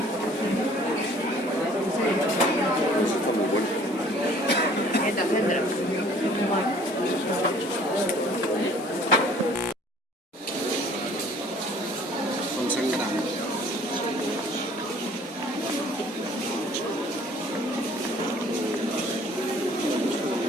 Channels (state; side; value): normal; both; correlation 0.54